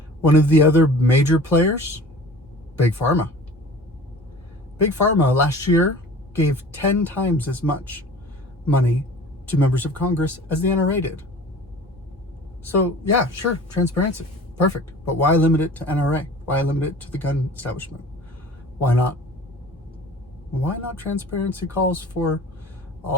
One of the other major players, Big Pharma. Big Pharma last year gave 10 times as much money to members of Congress as the NRA did. So yeah, sure, transparency, perfect. But why limit it to NRA? Why limit it to the gun establishment? Why not? Why not transparency calls for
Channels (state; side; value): normal; both; correlation 0.43